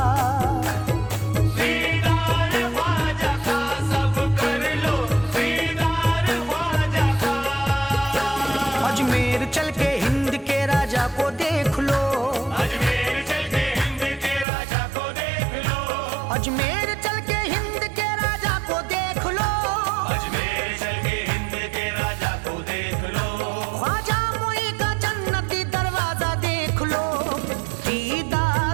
दीदार ख्वाजा का सब कर लो, दीदार ख्वाजा का। अजमेर चल के हिंद के राजा को देख लो। अजमेर चल के हिंद के राजा को देख लो। अजमेर चल के हिंद के राजा को देख लो। अजमेर चल के हिंद के राजा को देख लो। ख्वाजा मोई का जन्नती दरवाजा देख लो।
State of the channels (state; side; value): drops out; left; at 14.5 s